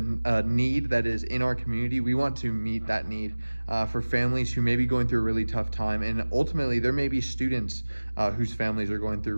need that is in our community, we want to meet that need for families who may be going through a really tough time. And ultimately, there may be students whose families are going through a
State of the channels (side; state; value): both; inverted; correlation -1.00